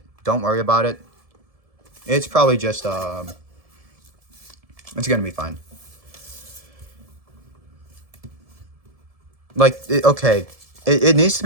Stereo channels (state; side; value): late; left; 1.7 ms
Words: don't worry about it. It's probably just it's gonna be fine. Like okay, it needs to